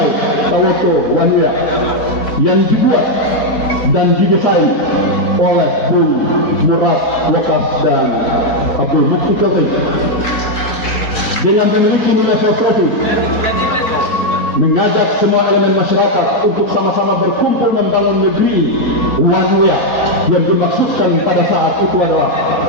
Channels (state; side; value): late; right; 4.2 ms